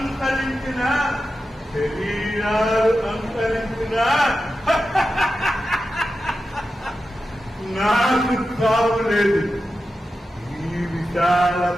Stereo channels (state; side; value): normal; both; correlation 0.91